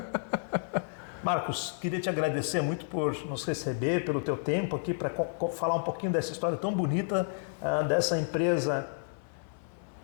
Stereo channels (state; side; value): silent; right; 57 dB below the other